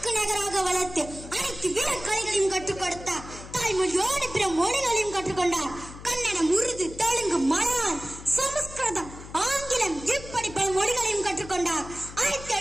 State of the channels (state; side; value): noise; left; hum, 15 dB below the sound